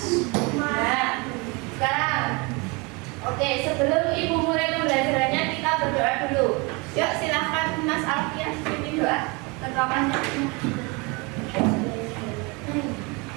Nah, sekarang, oke, sebelum Ibu mulai pembelajarannya kita berdoa dulu. Yuk silahkan Mas Alfian pimpin doa ketuakannya.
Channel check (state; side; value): quieter; left; 28.2 dB